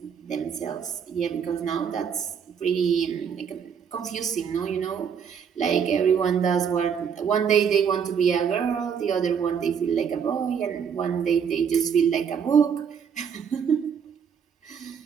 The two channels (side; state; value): left; quieter; 7.3 dB